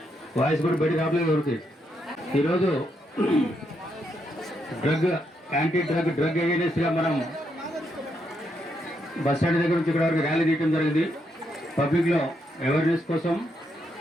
వాయిస్ కూడా బయట రావట్లేదు ఎవరికి. ఈరోజు యాంటీ డ్రగ్ అవేర్నెస్గా మనం బస్ స్టాండ్ దగ్గర నుంచి ఇక్కడ వరకు ర్యాలీ తీయడం జరిగింది. పబ్లిక్లో అవేర్నెస్ కోసం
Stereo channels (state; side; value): normal; both; correlation 0.79